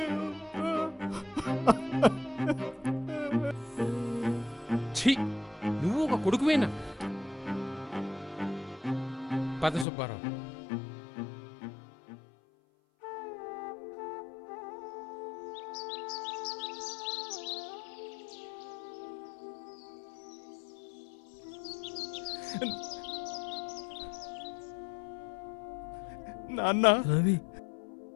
ఛీ, నువ్వు ఒక కొడుకువేనా? పద సుబ్బారావు. నాన్న, రవి,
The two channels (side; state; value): right; drops out; at 9.9 s